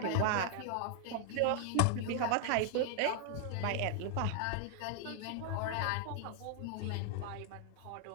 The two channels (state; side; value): different; both; correlation 0.00